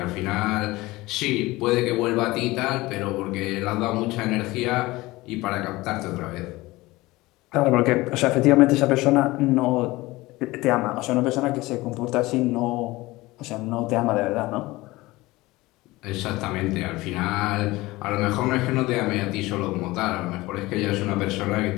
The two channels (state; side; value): quieter; right; 20.0 dB